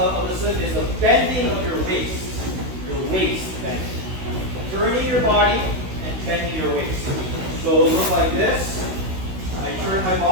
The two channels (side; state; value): left; late; 16 ms